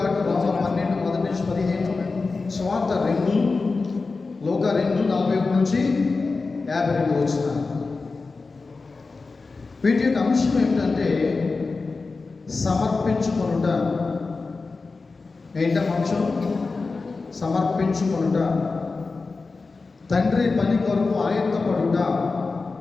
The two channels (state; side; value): quieter; right; 4.0 dB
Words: రోమా 12 మొదటి నుంచి 15, స్వార్థ 2, లోక 2 41 నుంచి 52 వచ్చిన. వీటి యొక్క అంశం ఏమిటంటే సమర్పించుకొనుట. ఏంటం అంశం? సమర్పించుకొనుట. తండ్రి పని కొరకు ఆయుత్తపడుట.